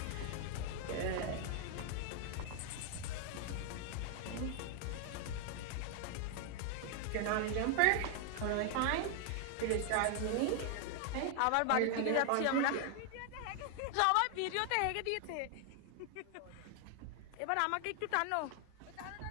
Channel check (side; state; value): both; different; correlation 0.00